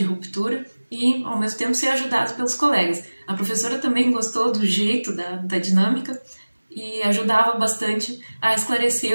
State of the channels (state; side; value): inverted; both; correlation -1.00